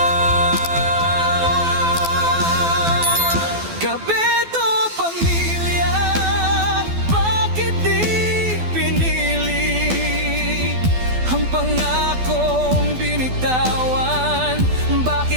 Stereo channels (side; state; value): left; late; 12 ms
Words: Kapeto, pamilya, bakit di pinili ang pangakong binitawan?